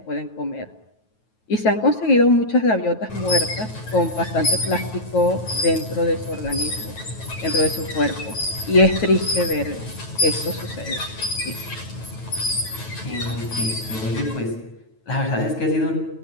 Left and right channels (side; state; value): right; late; 9.2 ms